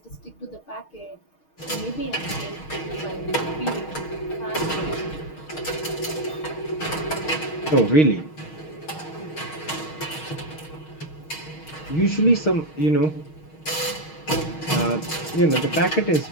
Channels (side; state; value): right; late; 6.4 ms